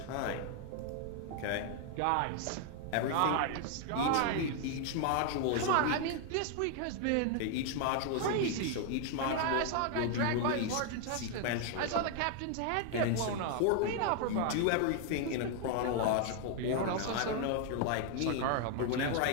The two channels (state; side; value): different; both; correlation 0.00